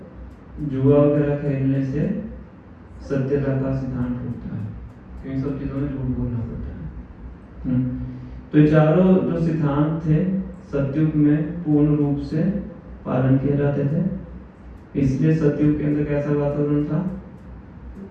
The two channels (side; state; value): both; identical; correlation 1.00